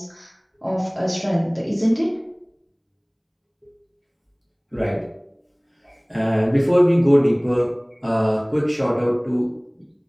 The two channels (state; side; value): identical; both; correlation 1.00